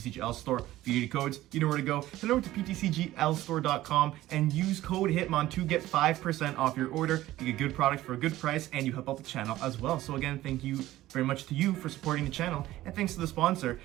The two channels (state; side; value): quieter; left; 15.5 dB